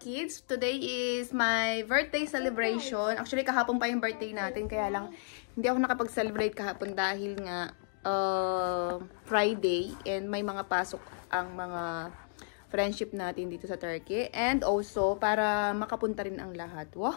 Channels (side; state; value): right; silent; digital silence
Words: kids. Today is my birthday celebration. Actually, kahapon pa yung birthday natin. Kaya lang, hindi ako nakapag-celebrate kahapon dahil nga Friday. And may mga pasok ang mga friendship natin dito sa Turkey. And also, para makapunta rin ang lahat.